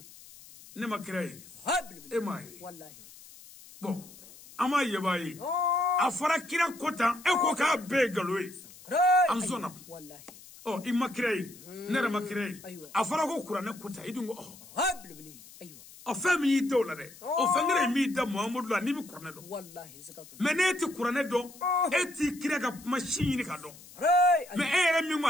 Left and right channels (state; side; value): noise; left; hiss, 20 dB below the sound